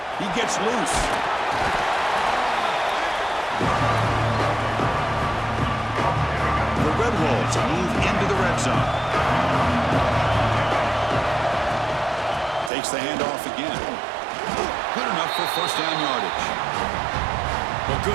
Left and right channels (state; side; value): drops out; left; at 12.7 s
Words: He gets loose. The Red Wolves move into the red zone. Takes the handoff again. Good enough for first down yardage. Well,